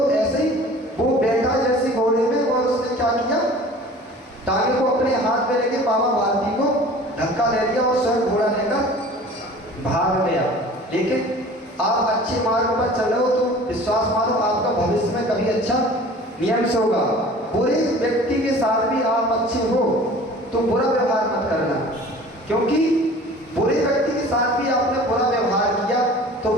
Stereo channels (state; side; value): normal; both; correlation 0.44